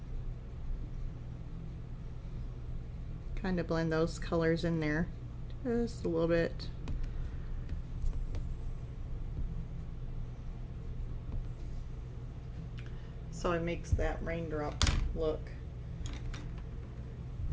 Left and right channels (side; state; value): both; identical; correlation 1.00